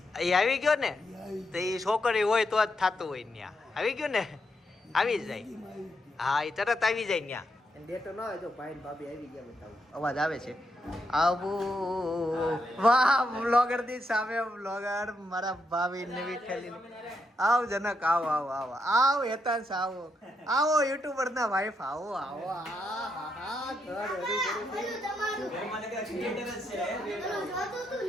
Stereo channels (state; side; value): normal; both; correlation 0.81